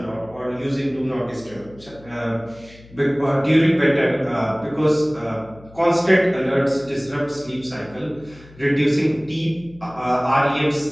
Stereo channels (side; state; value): left; noise; hum, 23 dB below the sound